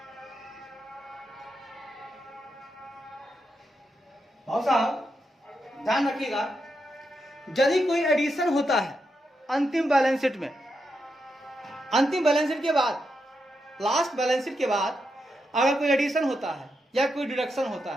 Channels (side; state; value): both; normal; correlation 0.84